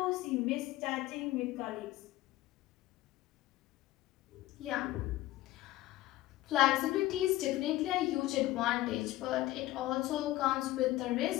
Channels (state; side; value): quieter; right; 16.6 dB